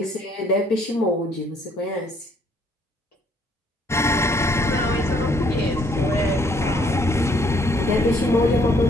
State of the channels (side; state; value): both; normal; correlation 0.65